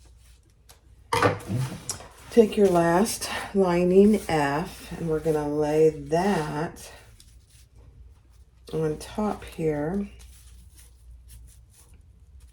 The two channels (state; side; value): identical; both; correlation 1.00